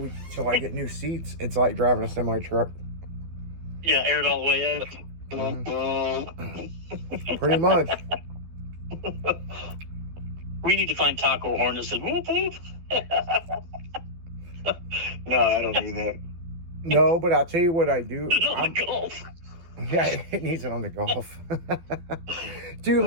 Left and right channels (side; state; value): left; late; 12 ms